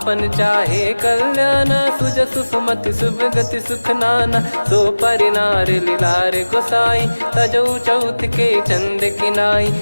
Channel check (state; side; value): inverted; both; correlation -1.00